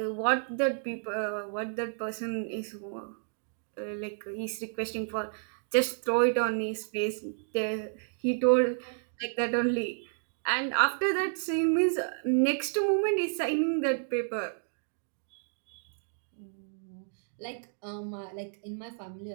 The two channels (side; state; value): left; silent; digital silence